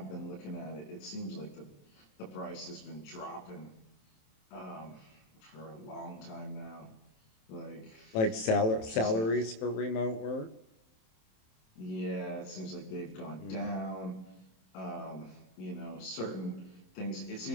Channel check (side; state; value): right; late; 27 ms